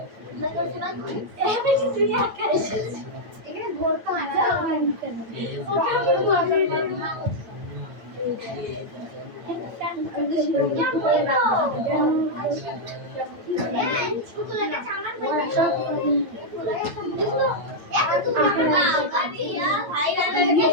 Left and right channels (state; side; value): late; left; 9.0 ms